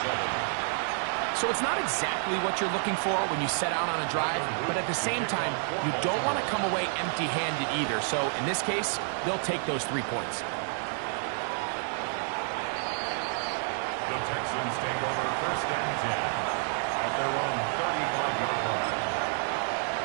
So it's not exactly what you're looking for when you set out on a drive, but at the same time, you don't want to come away empty-handed either. So in this case, they'll take those 3 points. The Texans take over 1st and 10 at their own 35-yard line.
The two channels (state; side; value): silent; left; 58 dB below the other